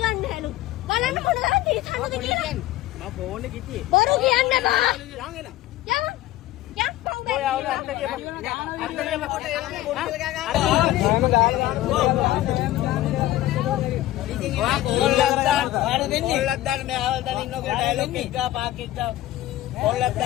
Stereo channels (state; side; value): quieter; right; 15.3 dB